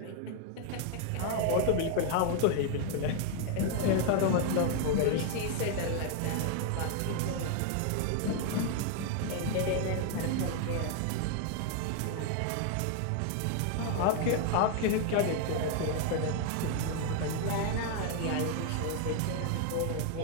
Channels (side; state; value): both; different; correlation 0.00